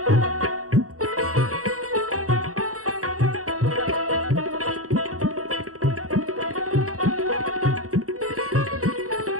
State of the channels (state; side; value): late; left; 0.65 ms